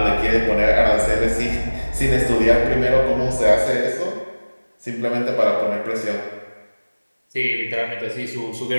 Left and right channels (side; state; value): both; inverted; correlation -1.00